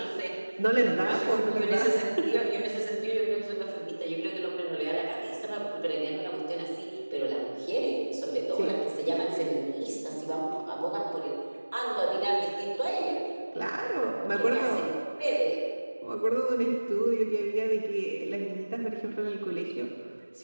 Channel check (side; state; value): both; inverted; correlation -1.00